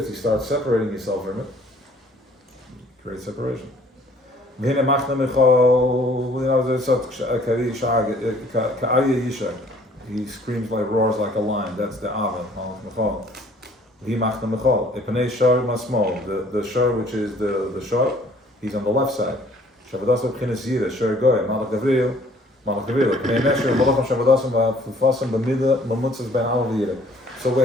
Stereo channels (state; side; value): normal; both; correlation 0.57